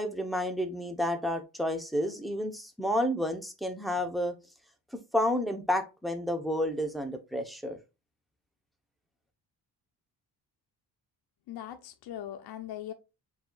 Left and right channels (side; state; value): both; normal; correlation 0.68